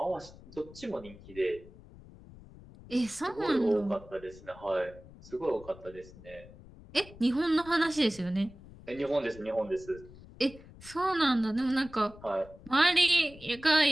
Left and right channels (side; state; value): left; noise; rumble, 19 dB below the sound